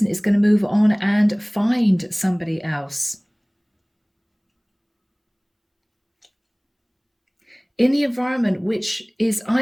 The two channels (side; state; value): both; identical; correlation 1.00